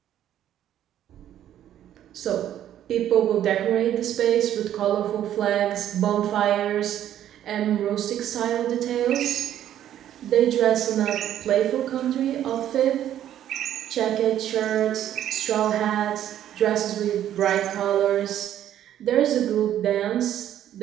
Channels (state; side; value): quieter; left; 11.3 dB